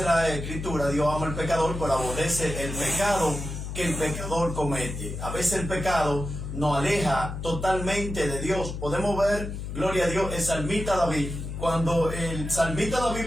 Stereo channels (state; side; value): noise; left; hum, 6 dB below the sound